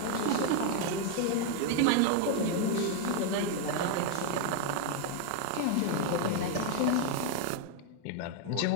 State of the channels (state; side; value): different; both; correlation 0.01